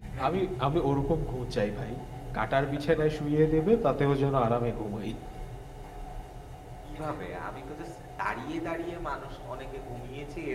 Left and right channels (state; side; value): identical; both; correlation 1.00